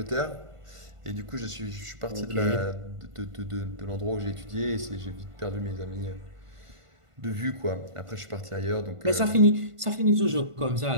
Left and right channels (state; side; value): late; left; 1.5 ms